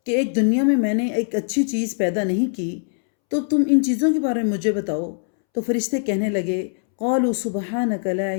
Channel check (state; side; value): silent; right; 65 dB below the other